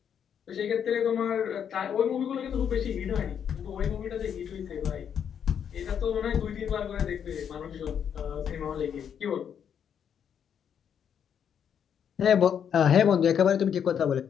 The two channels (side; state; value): right; quieter; 8.2 dB